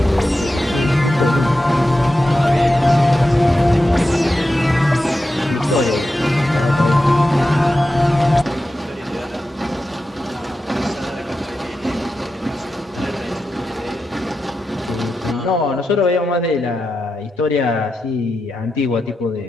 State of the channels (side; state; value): both; normal; correlation 0.90